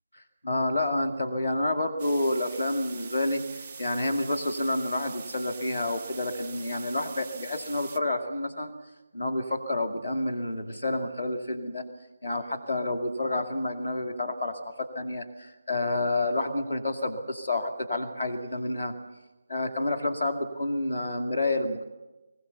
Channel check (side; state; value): both; inverted; correlation -0.84